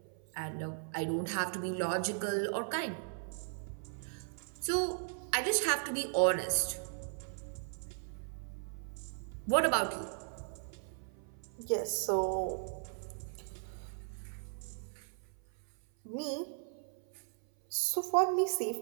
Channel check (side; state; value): left; silent; 53 dB below the other